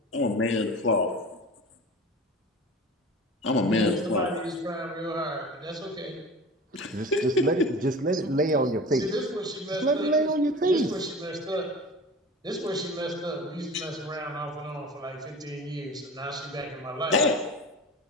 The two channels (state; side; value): normal; both; correlation 0.36